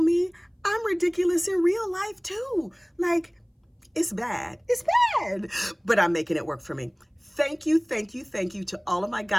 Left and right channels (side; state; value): both; identical; correlation 1.00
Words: me. I'm ridiculous in real life too. Like, it's bad. It's bad. But I'm making it work for me. Thank you, thank you, thank you to all of my